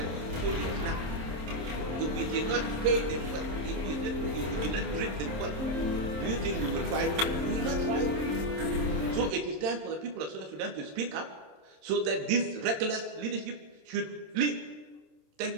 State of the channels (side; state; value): left; late; 26 ms